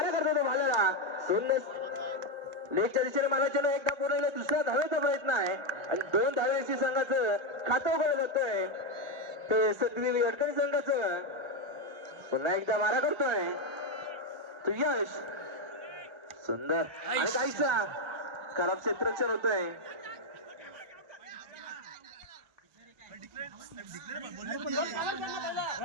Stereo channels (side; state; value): left; late; 1.4 ms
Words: करतो तो भाल्याला. सुंदर लेगच्या दिशेने मारायचे एकदा पूर्ण दुसऱ्या धावेचा प्रयत्न आहे आणि 2 धावेची संघाचं खातं उघडलं जातोय. ते सतवी अडकणी संघाचं पुन्हा एकदा मारा करतोय तो यश. सुंदर आणि काहीसा खराब क्षेत्ररक्षण होतोय.